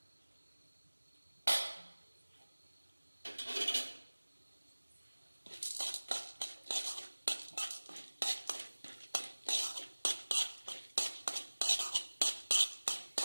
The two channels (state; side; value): inverted; both; correlation -1.00